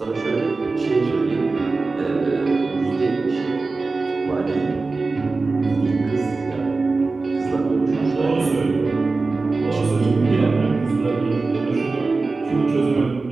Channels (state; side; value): quieter; left; 3.8 dB